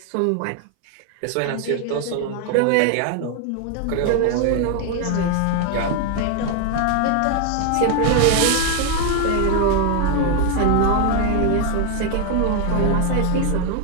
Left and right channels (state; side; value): different; both; correlation 0.01